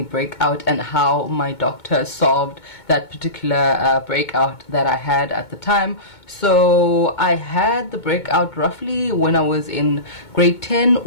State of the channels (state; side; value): late; right; 2.2 ms